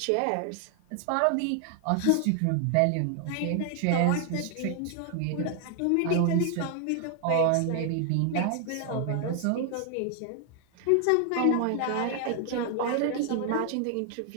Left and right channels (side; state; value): both; different; correlation 0.00